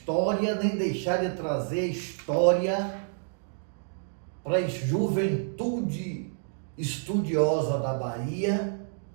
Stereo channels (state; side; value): silent; left; digital silence